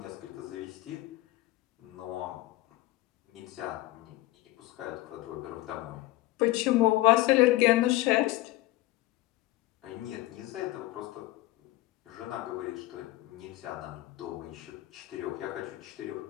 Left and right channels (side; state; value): right; quieter; 18.3 dB